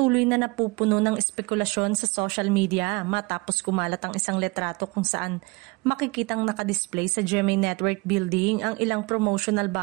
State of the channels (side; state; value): left; quieter; 26.1 dB